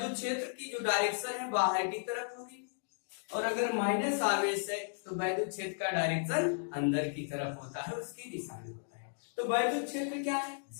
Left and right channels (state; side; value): silent; right; digital silence